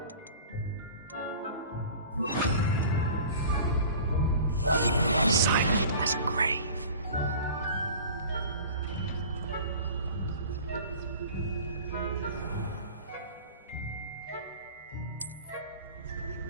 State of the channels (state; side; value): inverted; both; correlation -0.41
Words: Silent as a grave.